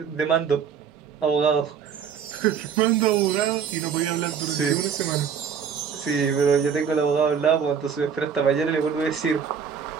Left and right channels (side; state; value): left; quieter; 7.1 dB